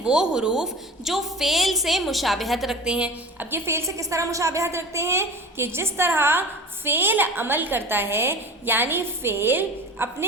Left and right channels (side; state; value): both; normal; correlation 0.35